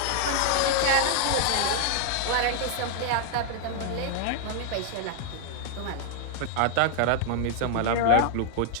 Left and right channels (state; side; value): different; both; correlation 0.00